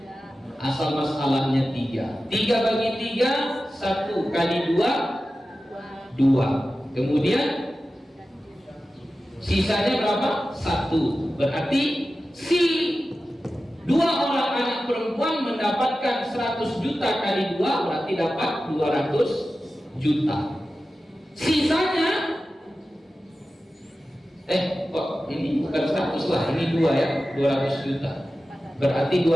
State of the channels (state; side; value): normal; both; correlation 0.94